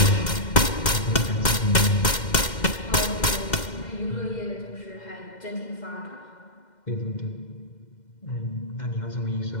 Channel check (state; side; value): late; right; 2.1 ms